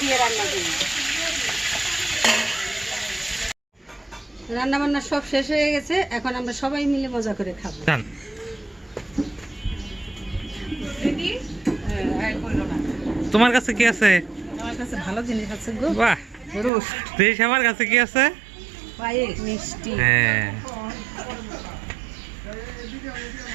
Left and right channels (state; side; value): drops out; left; at 16.7 s